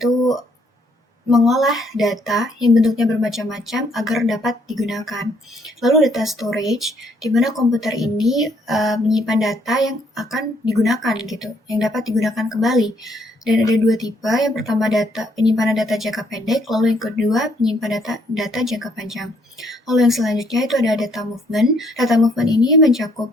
mengolah data yang bentuknya bermacam-macam agar dapat digunakan. Lalu data storage, di mana komputer ini menyimpan data yang akan digunakan gitu, yang dapat digunakan kembali. Dan ada dua tipe, yang pertama penyimpanan data jangka pendek, lalu yang kedua penyimpanan data jangka panjang. Lalu yang selanjutnya itu ada data movement. Data movement ini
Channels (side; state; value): both; normal; correlation 0.68